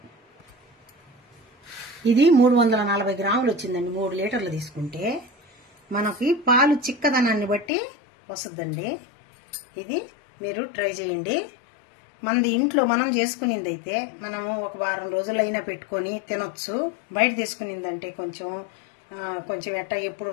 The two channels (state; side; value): drops out; right; at 7.7 s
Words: ఇది 340 గ్రాములు వచ్చిందండి. 3 లీటర్లు తీసుకుంటే మనకి పాలు చిక్కదనాన్ని బట్టి వస్తుందండి. ఇది మీరు ట్రై చేయండి. మనది ఇంట్లో మనం చేసుకునింది అయితే మనము ఒక వారం రోజులైనా పెట్టుకొని తినొచ్చు. బయట తీసుకునిందంటే కొంచెం ఎట్టా ఎప్పుడు